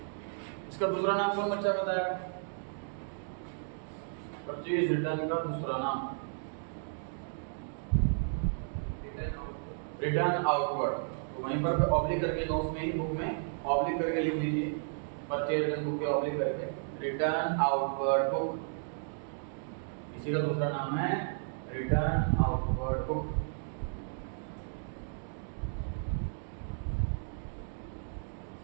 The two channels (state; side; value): silent; left; digital silence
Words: इसका दूसरा नाम कौन बच्चा बताया परचेज रिटर्न का दूसरा नाम रिटर्न आउटवर्ड तो वहीं पर ऑब्लिक करके नोट्स में ही बुक में ऑब्लिक करके लिख लीजिए परचेज रिटर्न बुक के ऑब्लिक करके रिटर्न आउटवर्ड बुक इसी का दूसरा नाम है रिटर्न आउटवर्ड बुक